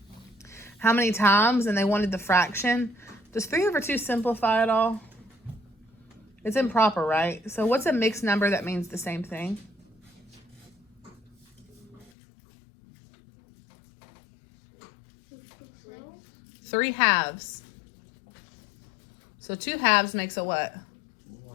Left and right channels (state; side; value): drops out; right; at 12.1 s